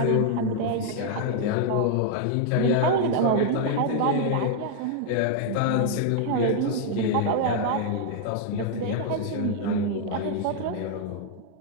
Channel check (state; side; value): different; both; correlation 0.00